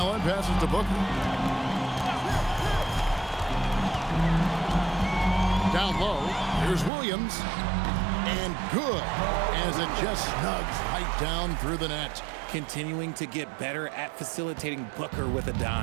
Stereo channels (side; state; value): left; drops out; at 6.9 s